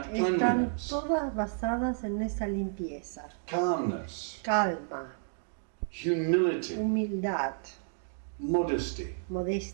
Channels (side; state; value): left; silent; digital silence